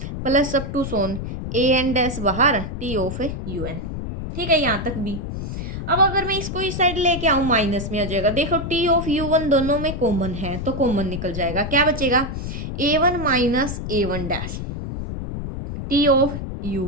plus up to so on an dash बाहर टी ऑफ un। ठीक है, यहाँ तक भी। अब अगर मैं इसको इस साइड लेके आऊँ, माइनस में आ जाएगा। देखो टी ऑफ u1 दोनों में कॉमन है तो कॉमन निकल जाएगा। क्या बचेगा, a1 minus a1 dash T of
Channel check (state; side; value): noise; left; rumble, 6 dB below the sound